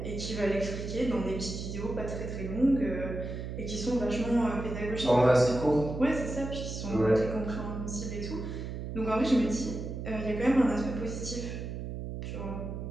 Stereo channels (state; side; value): noise; right; hum, 6 dB below the sound